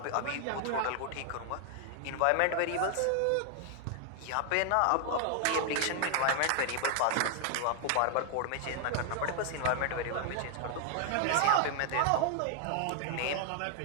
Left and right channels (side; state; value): both; different; correlation 0.00